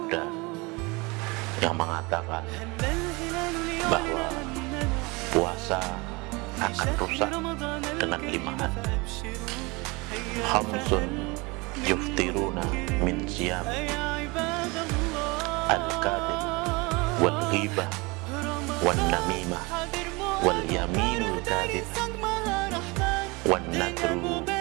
yang mengatakan bahwa puasa akan rusak dengan 5 hal. Khamsun yuftiruna min siyamihi al-kadhib wal ghibah wan namimah wal yaminul kadhib wan nadru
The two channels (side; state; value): left; quieter; 26.0 dB